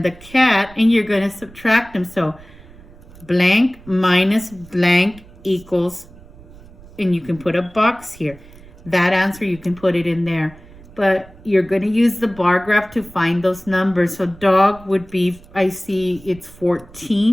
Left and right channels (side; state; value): right; noise; rumble, 21 dB below the sound